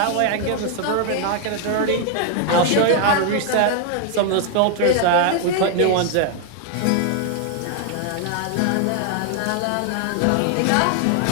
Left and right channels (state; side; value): different; both; correlation 0.00